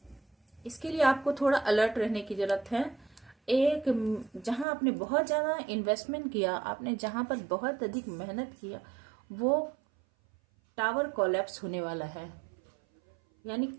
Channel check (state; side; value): drops out; left; at 4.7 s